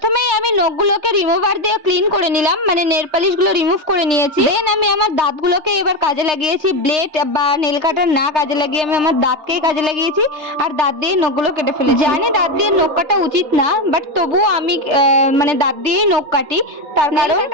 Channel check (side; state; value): left; late; 3.3 ms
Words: আমি নখগুলোকে রিমুভার দিয়ে ক্লিন করে নিলাম, মানে নেল পালিশ গুলো রিমুভ করে নিয়েছি। দেন আমি আমার দাঁতগুলোকে এবার কাজে লাগিয়েছি। ব্লেড বা নেল কাটার না কাজে লাগিয়ে আমি আমার দাঁতকেই কাজে লাগিয়েছি, আর দাঁত দিয়ে নখগুলো কেটে ফেলেছি। জানি দাঁত দিয়ে নখ কাটা উচিত না, বাট তবুও আমি মানে দাঁত দিয়েই নখ কাটি। তার কারণ নেল